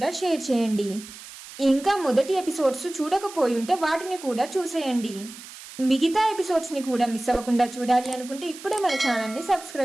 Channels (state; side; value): noise; right; hiss, 16 dB below the sound